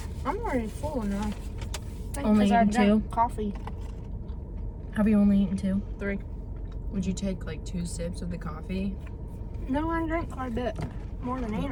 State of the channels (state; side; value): identical; both; correlation 1.00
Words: I'm already full enough. I think Only 'cause I eaten drank 2? coffee. Have you only eaten 2? 3. Would you take like 2 sips of the coffee? No, I drank quite a bit. More than